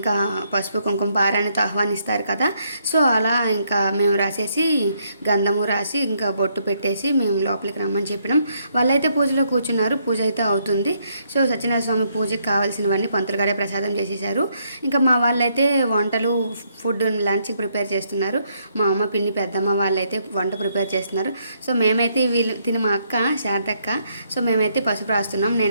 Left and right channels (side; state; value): both; inverted; correlation -0.73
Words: పసుపు కుంకుమ పారాయణతో ఆహ్వానిస్తారు కదా. సో అలా ఇంకా మేము రాసేసి గంధము రాసి ఇంకా బొట్టు పెట్టేసి మేము లోపలికి రమ్మని చెప్పినాం. వాళ్ళైతే పూజలో కూర్చున్నారు. పూజ అయితే అవుతుంది. సో సత్యనారాయణ స్వామి పూజకి కావాల్సినవన్నీ పంతులు గారే ప్రసాదం చేసేసారు. ఇంకా మా వాళ్ళైతే వంటలు ఫుడ్ లంచ్కి ప్రిపేర్ చేస్తున్నారు. మా అమ్మ పిన్ని పెద్దమ్మ వాళ్ళైతే వంట ప్రిపేర్ చేస్తున్నారు. సో మేమైతే తిని మా అక్క శారదక్క, సో మేమైతే పసుపు రాస్తున్నాం.